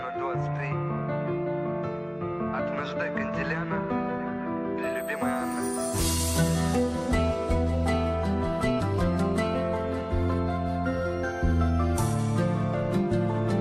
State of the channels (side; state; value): both; identical; correlation 1.00